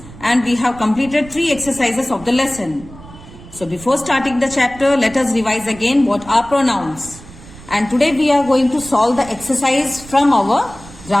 and we have completed 3 exercises of the lesson. So before starting the chapter, let us revise again what are pronouns. And today we are going to solve the exercise from our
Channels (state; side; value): noise; right; rumble, 18 dB below the sound